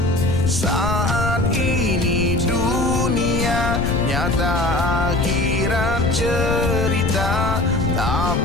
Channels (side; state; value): left; noise; rumble, 4 dB below the sound